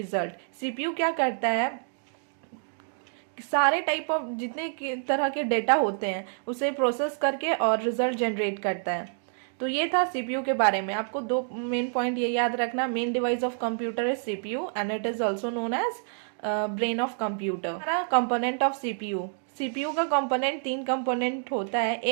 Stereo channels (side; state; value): left; silent; 59 dB below the other